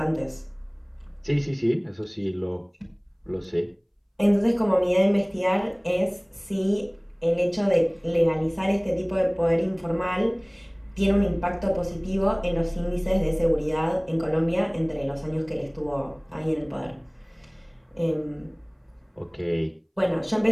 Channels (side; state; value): both; identical; correlation 1.00